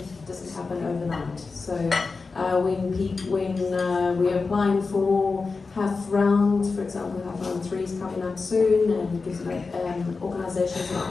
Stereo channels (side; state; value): right; quieter; 4.3 dB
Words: happen overnight. So when we're applying for half round, for example, half round 3 is coming up soon, and it gives organisations an